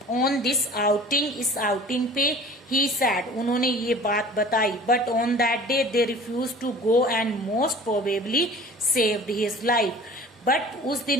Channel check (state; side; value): normal; both; correlation 0.44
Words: ऑन दिस आउटिंग, इस आउटिंग पे ही सैड, उन्होंने ये बात बताई, but on that day they refuse to go and most probably saved his life, but उस